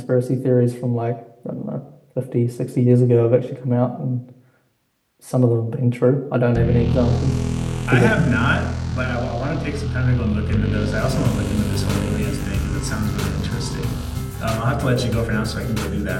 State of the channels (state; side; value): identical; both; correlation 1.00